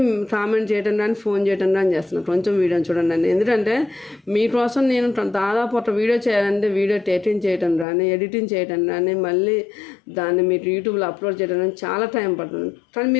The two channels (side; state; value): right; drops out; at 7.9 s